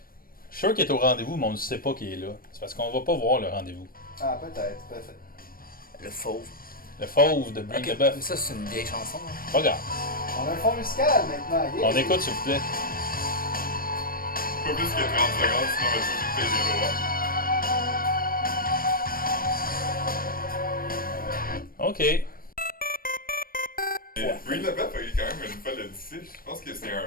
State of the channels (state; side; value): late; right; 0.42 ms